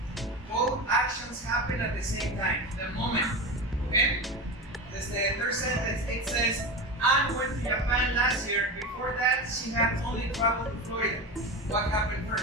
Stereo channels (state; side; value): normal; both; correlation 0.24